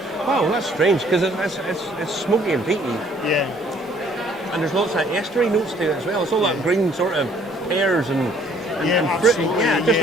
strange because it's smoky and peaty. Yeah. And there's lots of estery notes to it as well. It's all that green sort of pears and fruit. Yeah, just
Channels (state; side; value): normal; both; correlation 0.60